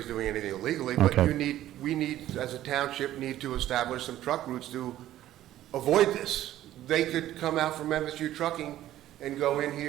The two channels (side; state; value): left; quieter; 13.4 dB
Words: doing anything illegally, but Okay. we need, as a township, need to establish some truck routes to avoid this. They could come out from MSU Trucking and go in